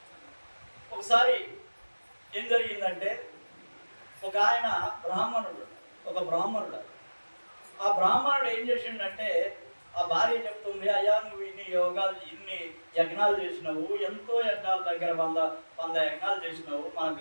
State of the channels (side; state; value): both; inverted; correlation -1.00